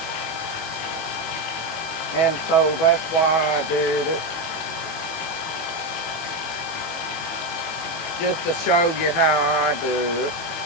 And so that's why I did it. Just to show you how I do it.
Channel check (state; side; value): late; right; 18 ms